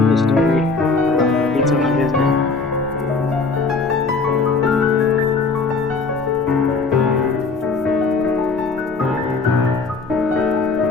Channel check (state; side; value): quieter; right; 4.1 dB